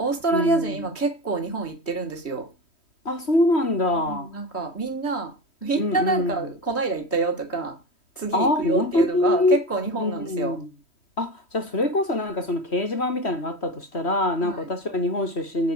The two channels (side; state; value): right; late; 3.1 ms